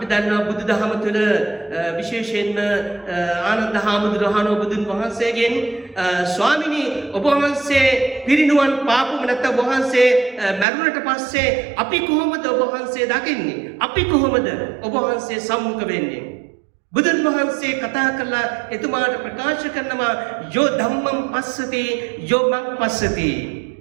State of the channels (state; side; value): drops out; left; at 10.7 s